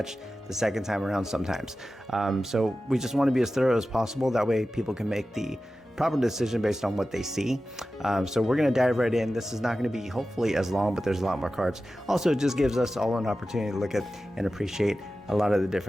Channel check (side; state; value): both; normal; correlation 0.94